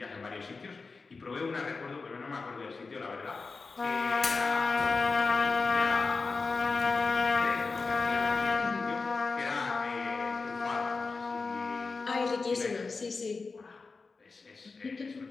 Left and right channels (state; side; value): quieter; right; 4.3 dB